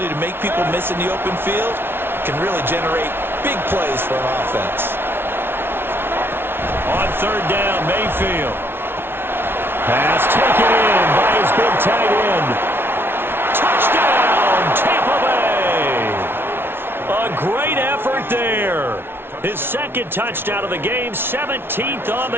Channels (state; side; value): late; left; 0.11 ms